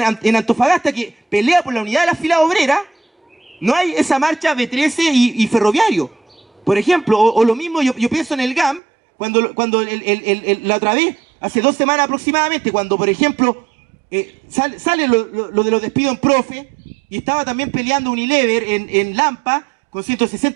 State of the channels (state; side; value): drops out; left; at 8.8 s